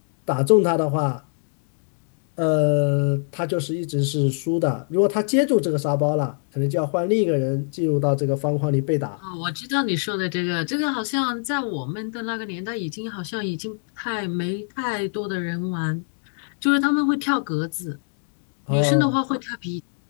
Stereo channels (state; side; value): silent; right; 62 dB below the other